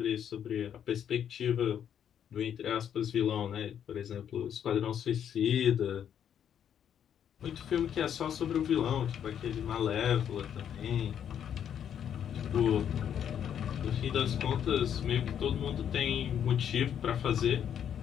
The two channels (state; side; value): quieter; right; 9.0 dB